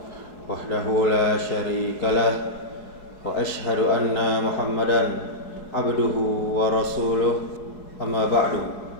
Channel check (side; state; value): right; late; 4.7 ms